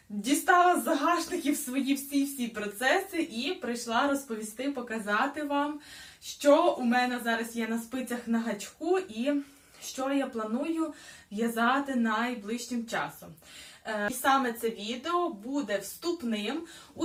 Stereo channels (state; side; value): identical; both; correlation 1.00